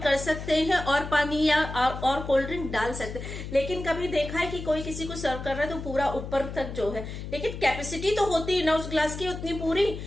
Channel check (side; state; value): left; noise; hum, 8 dB below the sound